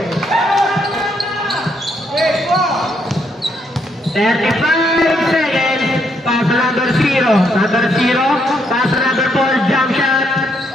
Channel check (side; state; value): both; normal; correlation 0.74